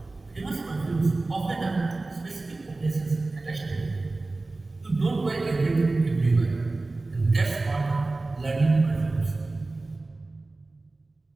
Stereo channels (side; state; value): left; quieter; 3.3 dB